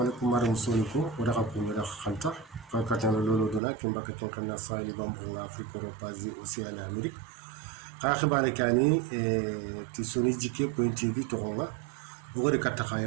maram soliko wada ko wada khanta ka katana lolo dona kin baka kin kanna sali bambo afrique europazi océan amérique ka khibare kani ti soni jike point tv to gonga bugo de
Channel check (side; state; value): left; drops out; at 3.6 s